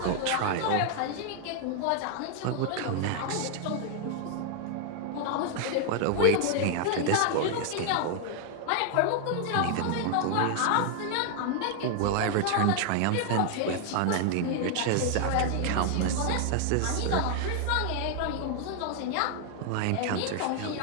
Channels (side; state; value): both; different; correlation 0.00